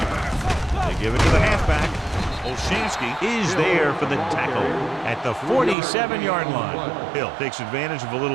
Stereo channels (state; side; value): drops out; left; at 5.8 s